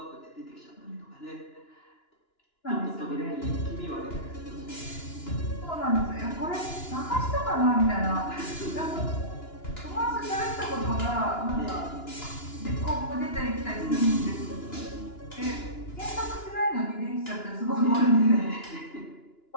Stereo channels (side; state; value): right; late; 2.9 ms